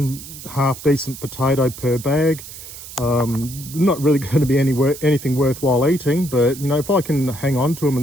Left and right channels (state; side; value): noise; right; hiss, 14 dB below the sound